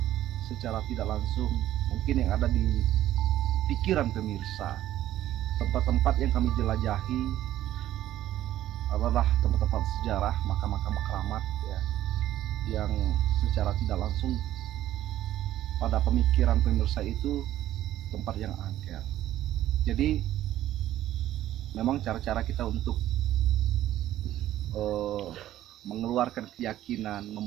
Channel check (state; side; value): quieter; left; 13.2 dB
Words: Secara tidak langsung, mungkin yang ada di pikiran pemirsa, tempat-tempat yang kami jelajahi adalah tempat-tempat sejarah, makam-makam keramat ya, yang secara tidak langsung pada pemikiran pemirsa itu tempat yang angker. Jadi memang cara-cara kita untuk mengeluarkan keyakinan,